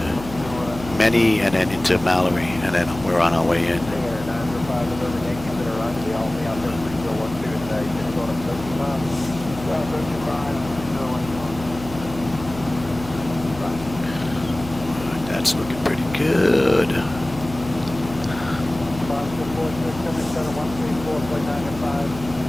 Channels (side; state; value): left; noise; hum, 13 dB below the sound